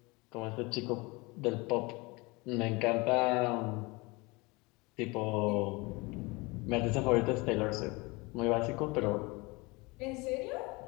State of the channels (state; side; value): quieter; right; 25.3 dB